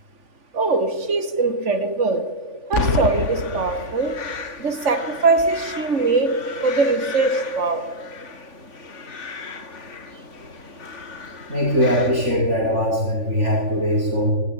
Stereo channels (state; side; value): late; left; 3.5 ms